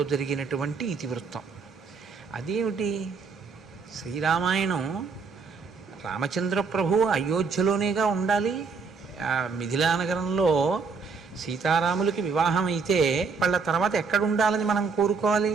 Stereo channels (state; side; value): quieter; left; 5.0 dB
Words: జరిగినటువంటి ఇతివృత్తం. అదేమిటి? శ్రీరామాయణం రామచంద్ర ప్రభు అయోధ్యలోనేగా ఉండాలి. మిథిలానగరంలో సీతారాములకి వివాహం అయితే వాళ్ళ తర్వాత ఎక్కడ ఉండాలని మనం